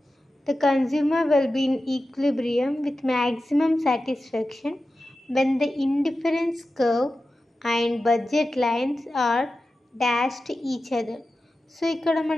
the consumer will be in equilibrium with maximum satisfaction when the indifference curve and budget lines are dashed each other. So ఇక్కడ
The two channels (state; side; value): normal; both; correlation 0.93